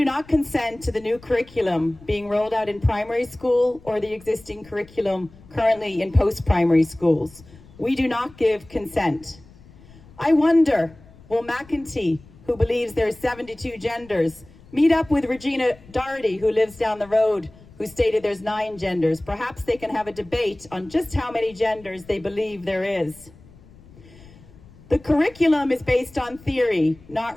not consent to the new curriculum being rolled out in primary school or the existing curriculum currently in post-primary schools. We do not give consent. I wonder, will McEntee, who believes there are 72 genders, meet up with Regina Doherty, who lives down the road, who stated there's 9 genders? Perhaps they can have a debate on just how many genders they believe there is. The curriculum is based on theory, not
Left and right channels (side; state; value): left; noise; rumble, 23 dB below the sound